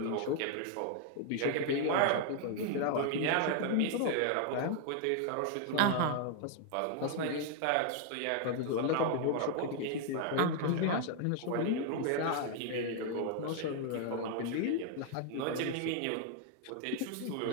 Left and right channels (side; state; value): both; different; correlation 0.00